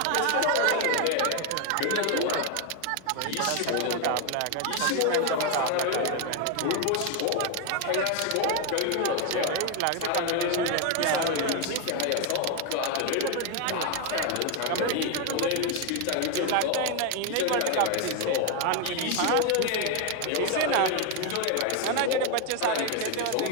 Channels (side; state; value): both; different; correlation 0.01